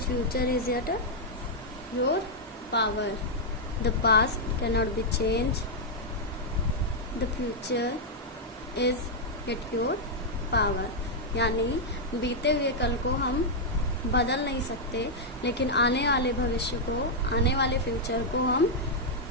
is yet your power. The past cannot be changed. The future is yet your power. यानी बीते हुए कल को हम बदल नहीं सकते, लेकिन आने वाले भविष्य को, आने वाले फ्यूचर को हम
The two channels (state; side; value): normal; both; correlation -0.05